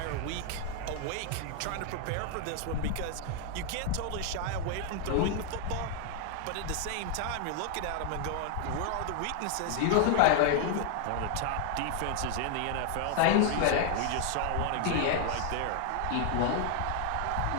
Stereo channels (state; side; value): different; both; correlation 0.00